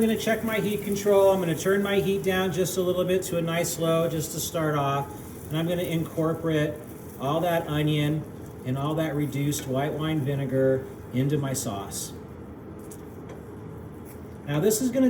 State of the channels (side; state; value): both; identical; correlation 1.00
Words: going to check my heat control. I'm going to turn my heat down just a little bit to a nice low just to start off. And I'm going to incorporate all that onion and all that reduced white wine vinegar into my sauce. Now this is going